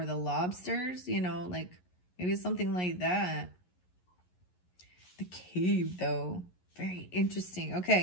the lobsters, you know, like maybe it's something like that. The cave, though, very interesting.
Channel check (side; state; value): right; late; 11 ms